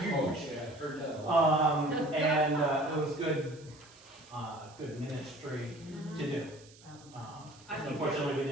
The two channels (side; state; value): right; noise; hiss, 24 dB below the sound